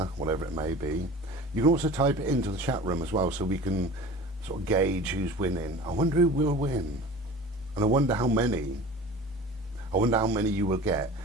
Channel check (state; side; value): normal; both; correlation 0.39